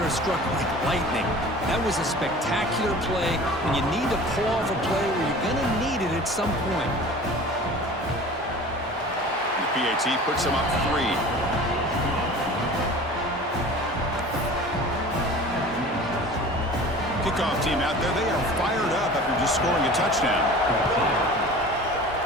struck like lightning. That was a spectacular play, and you need to pull off a play where you're going to need it at some point. And the PAT puts him up 3. Kickoff team out there, they are fired up after just scoring a touchdown.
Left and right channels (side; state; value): both; normal; correlation 0.41